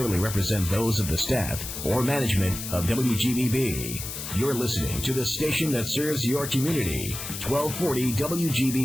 represent those of the staff or management of WGBB. You're listening to the station that serves your community, 1240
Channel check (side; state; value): left; noise; hiss, 7 dB below the sound